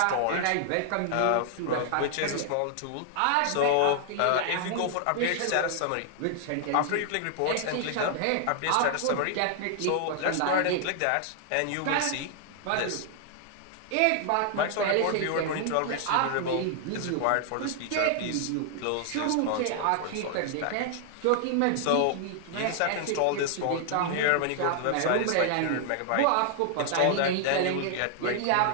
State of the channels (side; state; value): both; different; correlation 0.00